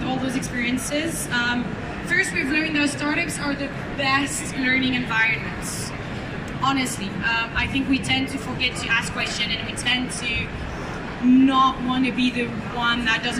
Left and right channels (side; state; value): both; identical; correlation 1.00